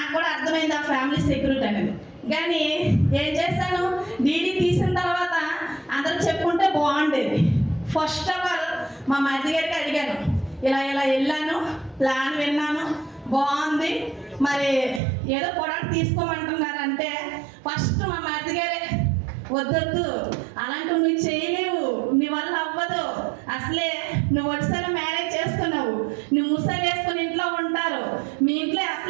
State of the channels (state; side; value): drops out; left; at 15.0 s